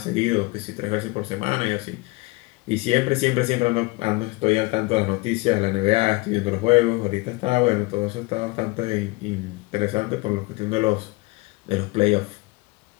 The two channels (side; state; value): right; quieter; 23.7 dB